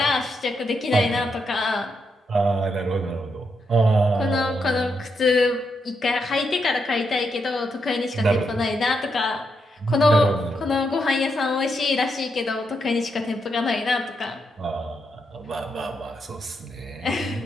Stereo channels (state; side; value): normal; both; correlation 0.81